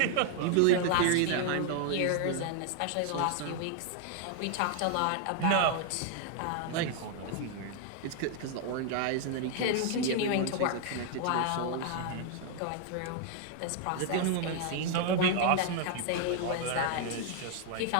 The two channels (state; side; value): different; both; correlation 0.00